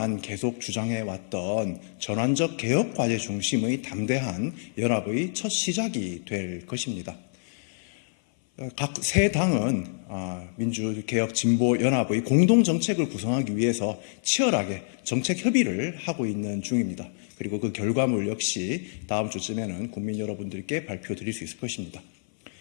계속 주장해왔던 전환적 개혁 과제 중심의 담대한 연합의 첫 시작이 될 것입니다. 각 세 당은 민주개혁진보연합의 공동정책을 구성하기 위해서 치열하게 정책 협의를 하고 있는 중입니다. 그리고 그 결과물 역시 다음 주쯤에는 국민 여러분들께 발표드릴 수 있을 것입니다.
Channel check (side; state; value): right; silent; 55 dB below the other